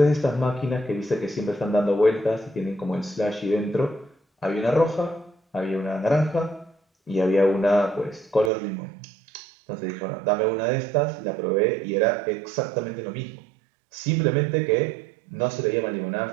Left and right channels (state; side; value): drops out; left; at 8.5 s